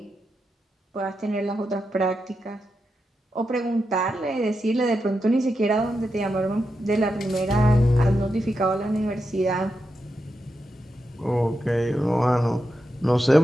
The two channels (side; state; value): both; normal; correlation 0.87